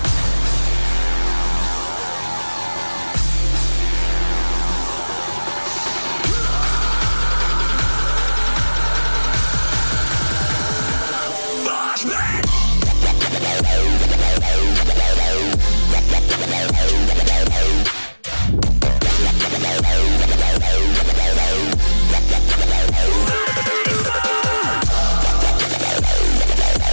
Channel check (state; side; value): inverted; both; correlation -1.00